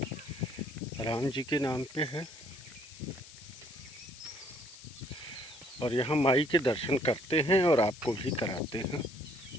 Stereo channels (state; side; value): noise; left; hiss, 18 dB below the sound